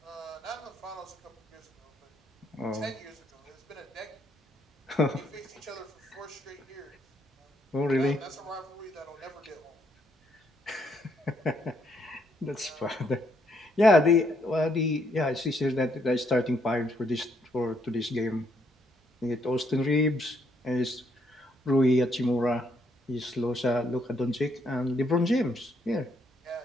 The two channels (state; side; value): normal; both; correlation 0.73